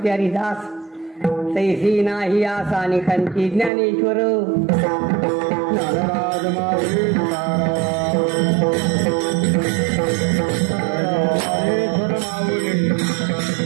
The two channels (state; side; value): drops out; left; at 3.7 s